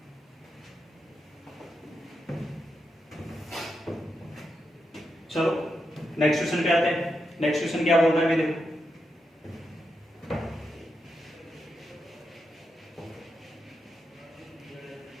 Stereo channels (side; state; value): both; normal; correlation 0.85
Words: चलो नेक्स्ट क्वेश्चन पे आते हैं। नेक्स्ट क्वेश्चन क्या बोल रहा है, देखो